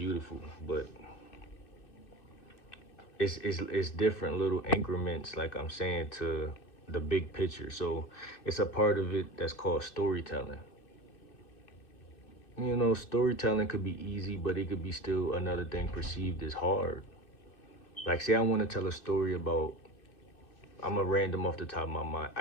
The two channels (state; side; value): late; right; 2.6 ms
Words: but it's different little increments, like I'm saying, to the big picture. So it's a part of it that's called storytelling. You know, storytelling could be easy, but it could be still another thing perceived as hard. Like, say I want to tell a story about, I'm a random off the top of my mind,